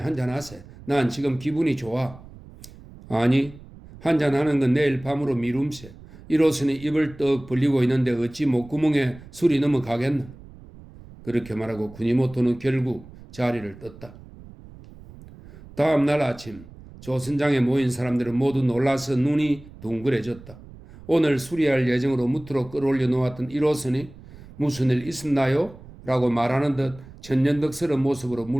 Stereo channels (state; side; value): noise; right; rumble, 19 dB below the sound